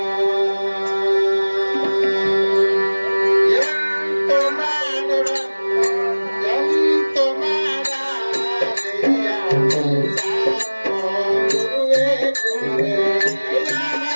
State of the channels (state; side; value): inverted; both; correlation -1.00